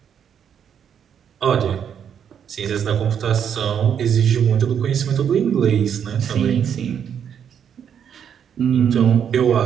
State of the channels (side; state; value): left; quieter; 8.3 dB